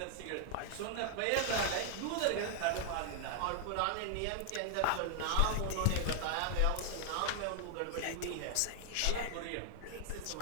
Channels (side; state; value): both; different; correlation 0.00